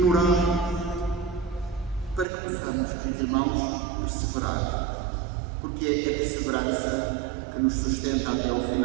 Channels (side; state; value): left; drops out; at 2.2 s